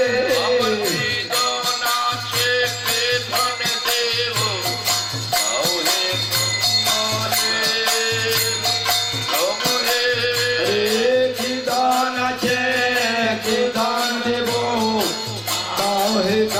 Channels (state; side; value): identical; both; correlation 1.00